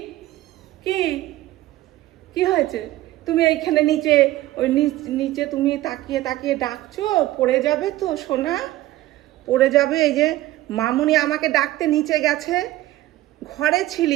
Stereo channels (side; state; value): left; quieter; 16.1 dB